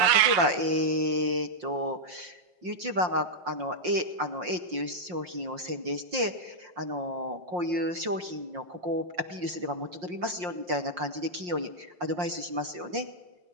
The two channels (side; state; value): left; late; 5.6 ms